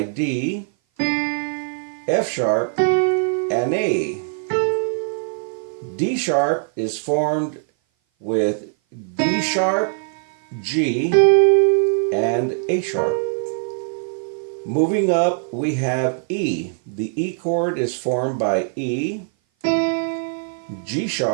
D, F sharp, and A. D sharp is formed with D sharp, G, and A sharp. Moving up, we have E. The E chord is formed by E, G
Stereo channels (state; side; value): silent; left; 57 dB below the other